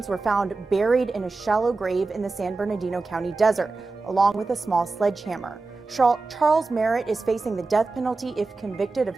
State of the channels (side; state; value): left; quieter; 3.7 dB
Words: were found buried in a shallow grave in the San Bernardino County desert, along with a small sledgehammer. Charles Merritt is facing the death penalty if convicted of